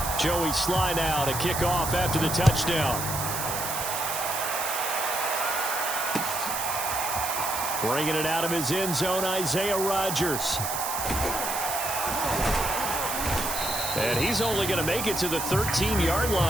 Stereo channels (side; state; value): right; noise; hiss, 4 dB below the sound